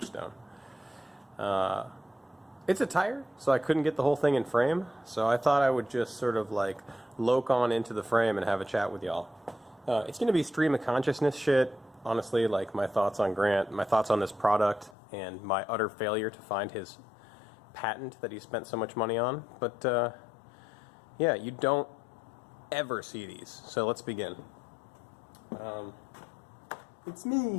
It's a tire, so I couldn't get the whole thing in frame, so I thought I would just sort of like loke on into the frame and have a chat with y'all. It's going to be stream of consciousness shit, honestly, like my thoughts on Grant, my thoughts on this product, and my utter failure to find his patent that he spent so much money on. But yeah, you don't ever see these, so let's begin. It's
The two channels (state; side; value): drops out; right; at 15.0 s